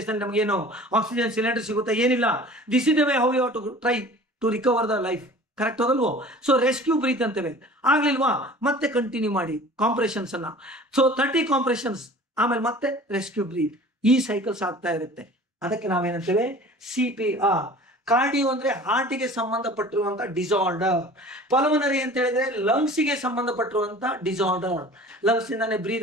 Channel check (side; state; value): both; normal; correlation 0.44